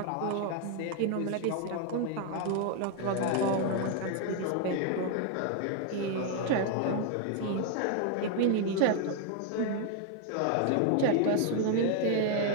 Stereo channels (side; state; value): both; different; correlation 0.00